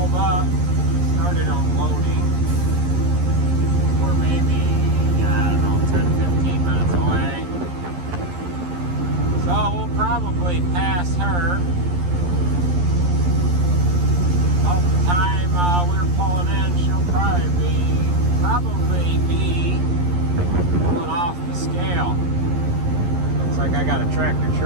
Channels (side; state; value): left; late; 11 ms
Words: up, started unloading. We're maybe, I don't know, 10-15 minutes away. So we'll probably pass her. About the time we're pulling in, she'll probably be pulling off the scale. Looks like I got a tractor